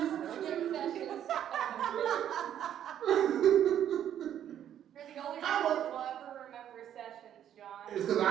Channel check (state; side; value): quieter; left; 10.3 dB